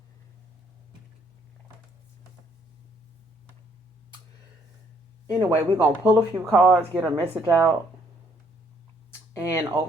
Anyway, we're going to pull a few cards, get a message out. And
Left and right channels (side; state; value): both; normal; correlation 0.67